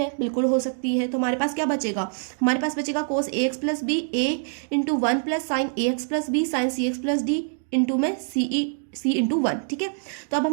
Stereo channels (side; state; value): left; silent; digital silence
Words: बिल्कुल हो सकती है, तो हमारे पास क्या बचेगा, हमारे पास बचेगा कोस a x plus B A into 1 plus sign A x plus B sign C x plus D into में सी इंटू 1। ठीक है, तो अब